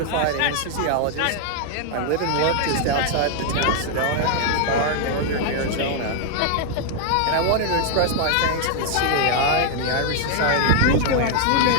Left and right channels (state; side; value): different; both; correlation 0.00